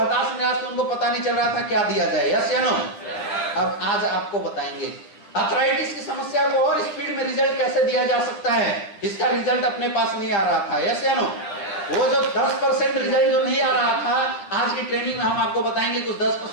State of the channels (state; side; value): late; right; 10 ms